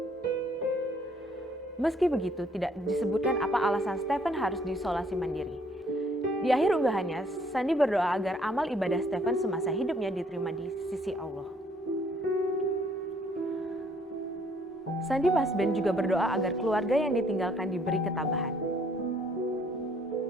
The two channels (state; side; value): normal; both; correlation 0.64